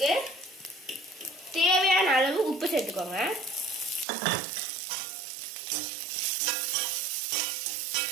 தேவையான அளவு உப்பு சேர்த்துக்கோங்க.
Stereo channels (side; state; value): left; drops out; at 4.0 s